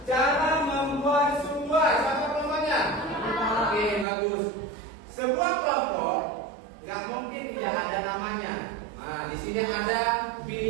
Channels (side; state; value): left; drops out; at 4.0 s